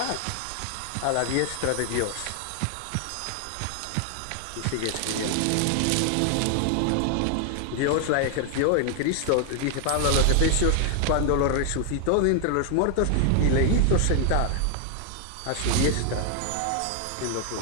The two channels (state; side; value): different; both; correlation 0.00